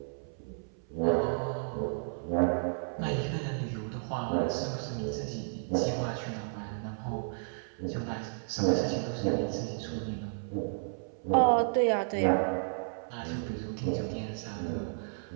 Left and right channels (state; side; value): silent; left; 56 dB below the other